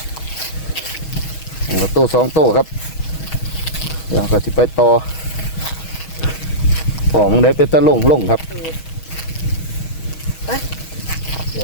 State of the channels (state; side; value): late; right; 6.3 ms